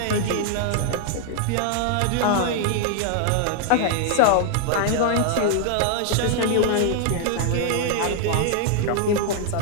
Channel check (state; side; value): different; both; correlation 0.00